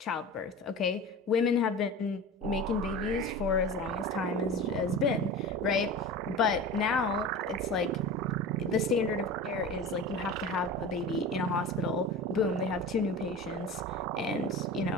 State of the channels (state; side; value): normal; both; correlation 0.32